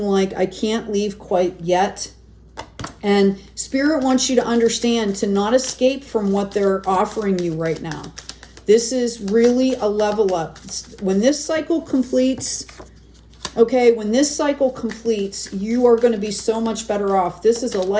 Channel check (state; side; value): identical; both; correlation 1.00